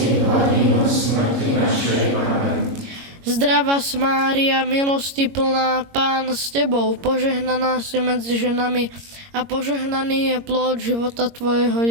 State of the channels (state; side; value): late; left; 22 ms